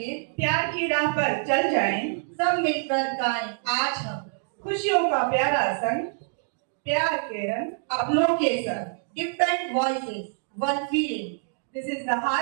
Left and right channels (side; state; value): left; silent; digital silence